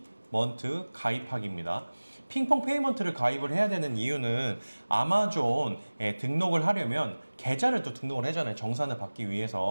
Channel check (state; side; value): inverted; both; correlation -1.00